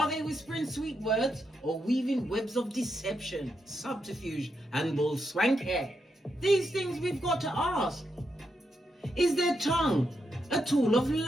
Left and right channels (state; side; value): normal; both; correlation 0.83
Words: they whispering sweet words or weaving webs of deception, subterfuge, and bull swanky? These things we've got to ask. Is their tongue a tool of